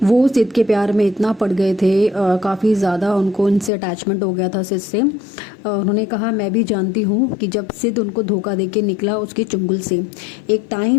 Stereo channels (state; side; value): drops out; right; at 3.7 s